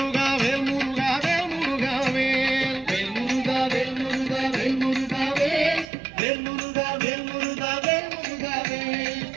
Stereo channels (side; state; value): left; drops out; at 5.9 s